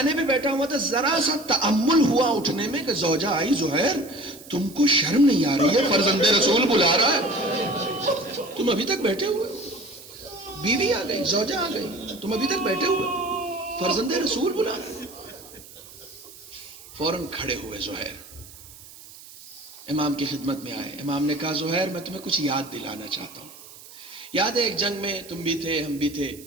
پہ بیٹھا ہوا تھا، ذرا سا تأمل ہوا اٹھنے میں کہ زوجہ آئی، زہیر تم کو شرم نہیں آ رہی ہے؟ فرزند رسول بلا رہا ہے، تم ابھی تک بیٹھے ہوئے، بیوی آ گئی، زوجہ آ گئی، تم ابھی تک بیٹھے ہوئے، فرزند رسول بلا رہا ہے۔ فوراً کھڑے ہوئے زہیر، امام کی خدمت میں آئے۔ امام نے کہا زہیر میں تمہیں کچھ یاد دلانا چاہتا ہوں، یاد ہے ایک جنگ میں تم بھی تھے، ہم بھی تھے،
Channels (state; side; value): noise; right; hiss, 19 dB below the sound